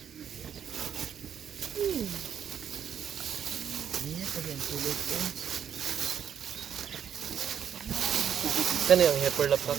Kani ang heifer lap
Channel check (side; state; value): left; quieter; 8.7 dB